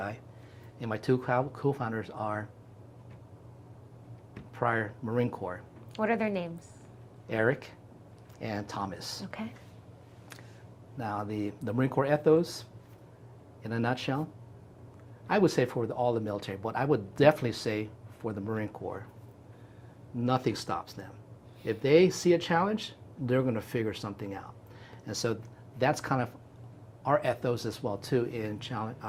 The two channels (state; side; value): identical; both; correlation 1.00